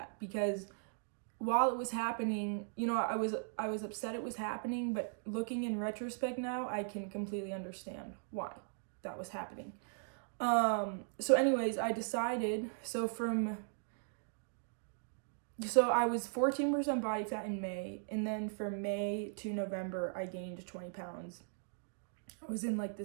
because while it was happening, I was upset it was happening, but looking in retrospect now, I can completely understand why that was happening. So anyways, I decided, so I was 14% body fat in May, and then from May to November, I gained 20 pounds. I was in like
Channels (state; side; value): silent; left; digital silence